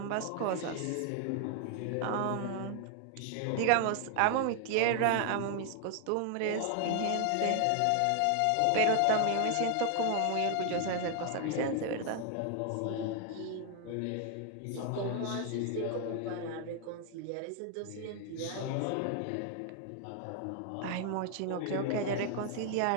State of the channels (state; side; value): different; both; correlation 0.00